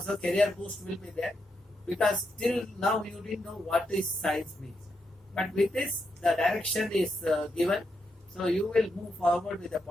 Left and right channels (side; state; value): both; normal; correlation 0.82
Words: career boost will be there, because till now you didn't know what is science means. But with this, the direction is given, so you will move forward with a